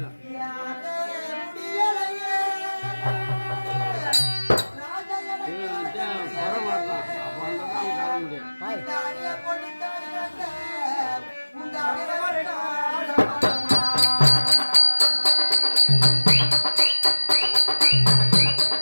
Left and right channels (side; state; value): both; inverted; correlation -1.00